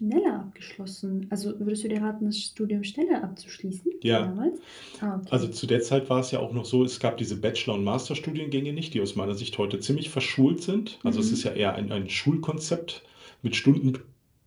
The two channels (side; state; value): both; identical; correlation 1.00